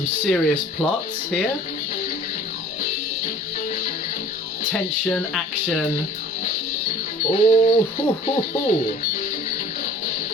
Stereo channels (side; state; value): both; normal; correlation 0.49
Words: serious plots here. Tension, action. Oh, ho, ho, ho.